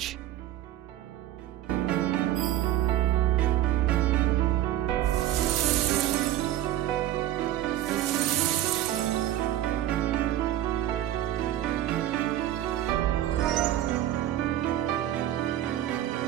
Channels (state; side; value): quieter; left; 13.1 dB